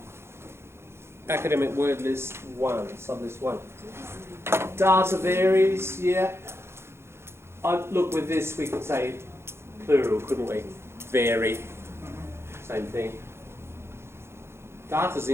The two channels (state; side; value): late; left; 0.12 ms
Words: academic word list 1, sublist 1. Data varies, yeah. Look, with this we could say plural, couldn't we? Vary, same thing. Data's